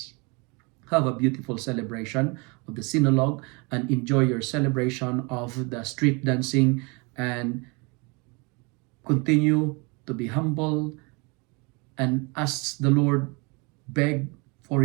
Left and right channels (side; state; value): left; quieter; 29.8 dB